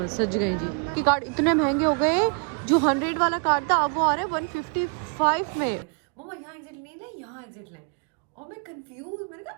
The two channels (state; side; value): quieter; left; 38.1 dB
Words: गए जी। कि कार्ड इतने महंगे हो गए, जो 100 वाला कार्ड था अब वो आ रहा है 155 में। मम्मा यहाँ एग्जिट नहीं है, यहाँ एग्जिट लें। और मैं कंफ्यूज, मैंने कहा